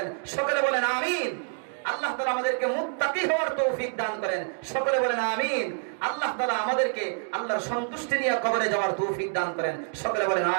সকলে বলেন আমিন। আল্লাহ তাআলা আমাদেরকে মুত্তাকি হওয়ার তৌফিক দান করেন। সকলে বলেন আমিন। আল্লাহ তাআলা আমাদেরকে আল্লাহর সন্তুষ্টি নিয়ে কবরে যাওয়ার তৌফিক দান করেন। সকলে বলেন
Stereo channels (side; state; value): left; silent; 60 dB below the other